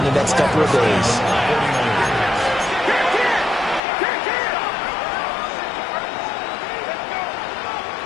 the next couple of days.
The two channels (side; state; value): right; drops out; at 3.8 s